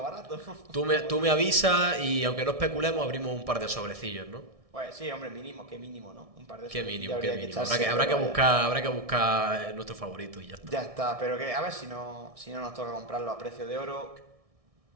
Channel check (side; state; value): left; late; 1.6 ms